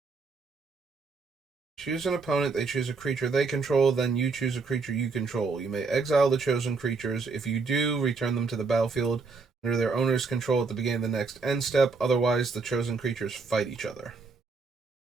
Choose an opponent, they choose a creature they control, then you choose a creature you control. You may exile the chosen creatures. If you do, return them to the battlefield under their owner's control at the beginning of the next end step. Otherwise, the chosen creatures fight each other.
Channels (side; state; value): left; quieter; 4.4 dB